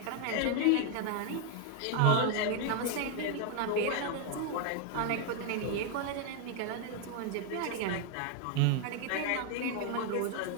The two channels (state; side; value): different; both; correlation 0.00